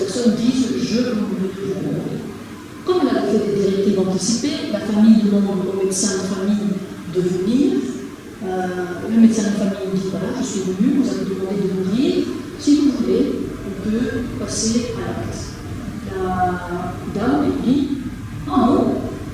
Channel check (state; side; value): identical; both; correlation 1.00